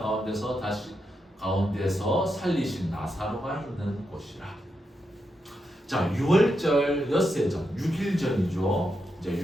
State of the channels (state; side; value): normal; both; correlation 0.85